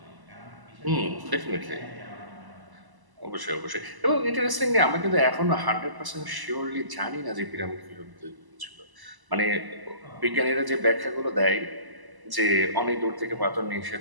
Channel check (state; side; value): late; left; 1.0 ms